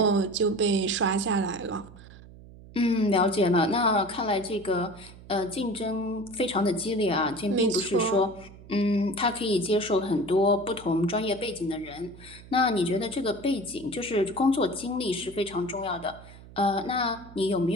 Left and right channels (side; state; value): right; noise; hum, 19 dB below the sound